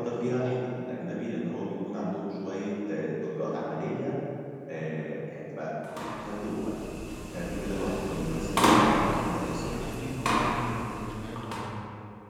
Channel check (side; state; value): both; identical; correlation 1.00